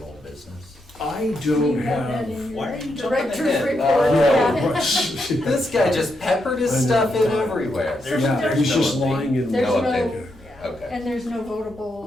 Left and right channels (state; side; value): normal; both; correlation 0.82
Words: old business. I Do you don't have that have. in Why your are you jumping director's ahead? report? Yeah. Yeah. This guy just peppered his I know. stuff in everywhere. There's- Yeah, there's he's no just update. lying in. There's No no, update. yeah. Okay. And there's no